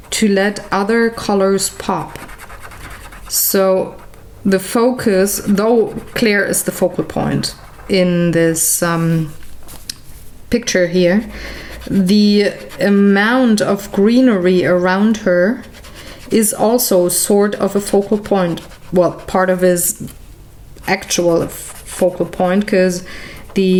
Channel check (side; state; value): both; identical; correlation 1.00